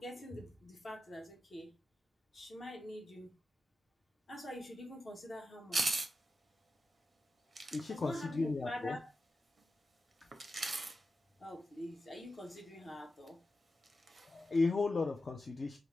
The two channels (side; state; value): both; normal; correlation 0.91